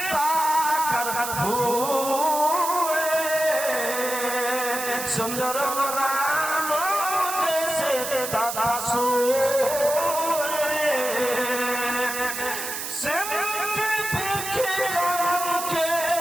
کر بھوئے سندر رام جیسے دادا سوئے سمجھ بکھرم کے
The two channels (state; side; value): noise; right; hiss, 6 dB below the sound